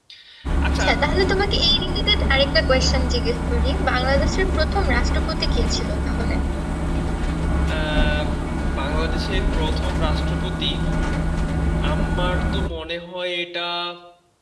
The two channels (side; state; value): both; identical; correlation 1.00